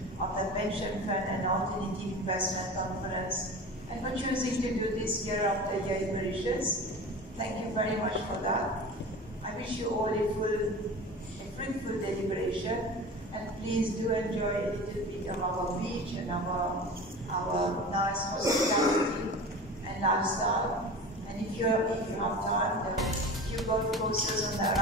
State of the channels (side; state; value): both; normal; correlation 0.34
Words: of the Pension Fund and Alternative Investment Conference, and for choosing to do this year after year in Mauritius. Thank you very much for that. I wish you all a fruitful deliberation, and please do enjoy a little bit of our beach and our nice hospitality and lifestyle. And if you have time, there are a few golf courses